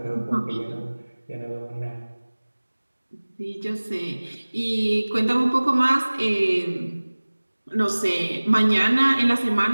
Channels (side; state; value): both; inverted; correlation -1.00